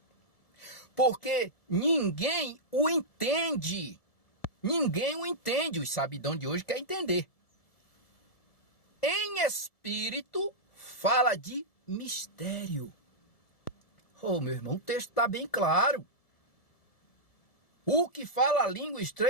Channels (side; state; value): right; late; 1.7 ms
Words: Porque ninguém o entende. Ninguém o entende. Os sabidão de hoje quer entender. Em espírito, fala de mistério. Oh, meu irmão, o texto está bem claro. O que fala a língua